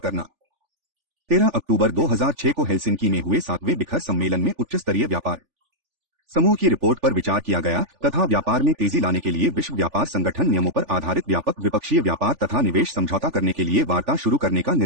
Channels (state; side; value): late; left; 3.4 ms